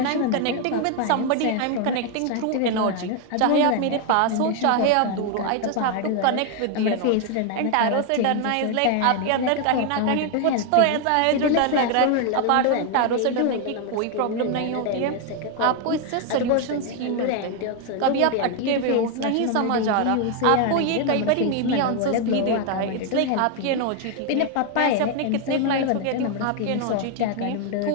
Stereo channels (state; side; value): different; both; correlation 0.00